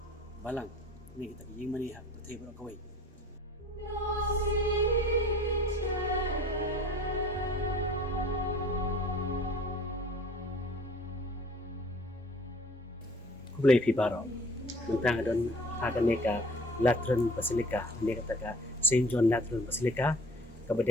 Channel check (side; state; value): both; normal; correlation 0.49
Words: Balang. Ini kita yang mani hak betul Baroh kawai. Kublai pi Baroh. Menta idon hakanika Latran Basilika. Ini katakan Saint John Latran Basilika